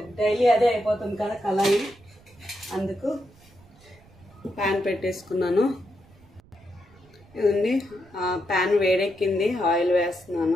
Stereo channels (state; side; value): noise; right; rumble, 26 dB below the sound